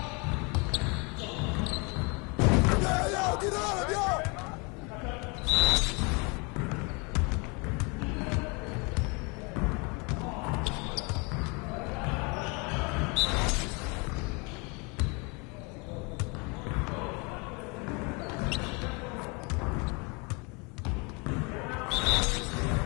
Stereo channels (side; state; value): right; quieter; 30.5 dB